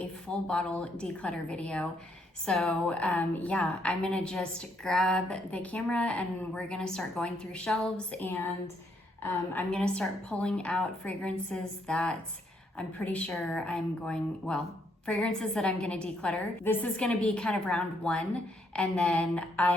full bottle declutter video. So yeah, I'm gonna just grab the camera and we're gonna start going through shelves, and I'm gonna start pulling out fragrances that I'm pretty sure fragrances that I'm gonna declutter. This is gonna be kind of round one, and then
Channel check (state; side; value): normal; both; correlation 0.72